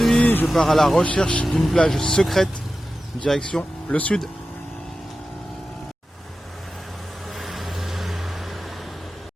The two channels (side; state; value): both; normal; correlation 0.93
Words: je pars à la recherche d'une plage secrète, direction le sud.